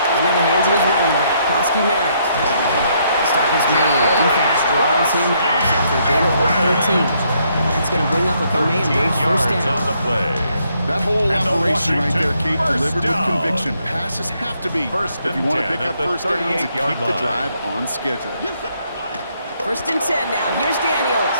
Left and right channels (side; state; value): both; inverted; correlation -0.72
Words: Into the hands of his running back, Krosky Merritt. The stop is made. Defense drives him out after a gain of about 13. And that's going to bring up a Commanders first down. On the play. That whole operation right there, Kate, First delivered down. with conviction. Passes have to be First if you and want to 10 pick at up the first downs and 38-yard keep the line. drive on schedule. First and 10 now. Here's Daniels.